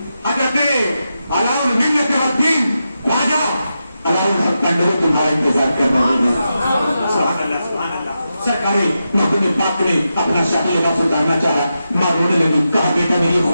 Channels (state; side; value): inverted; both; correlation -0.88